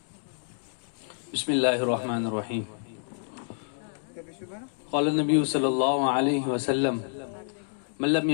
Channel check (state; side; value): silent; right; digital silence